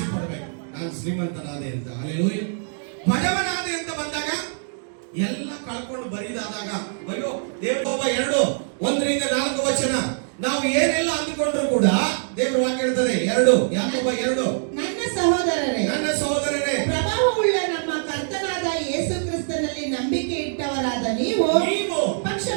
ಪಡ್ಬೇಕು. ನಾನು ಶ್ರೀಮಂತನಾದೆ ಅಂತ. ಹಲ್ಲೆಲೂಯ. ಬಡವನಾದೆ ಅಂತ ಬಂದಾಗ ಎಲ್ಲ ಕಳ್ಕೊಂಡು ಬರಿದಾದಾಗ ಅಯ್ಯೋ ದೇವರ 2:1-4 ವಚನ ನಾವು ಏನೆಲ್ಲ ಅಂದುಕೊಂಡ್ರು ಕೂಡ ದೇವರ ವಾಕ್ಯ ಹೇಳ್ತದೆ 2 ಯಾಕೋಬ 2 ನನ್ನ ಸಹೋದರರೇ ಪ್ರಭಾವವುಳ್ಳ ನಮ್ಮ ಕರ್ತನಾದ ಯೇಸು ಕ್ರಿಸ್ತನಲ್ಲಿ ನಂಬಿಕೆ ಇಟ್ಟವರಾದ ನೀವು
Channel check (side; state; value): left; silent; digital silence